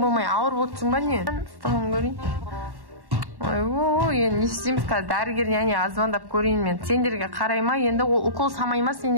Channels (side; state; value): left; late; 1.1 ms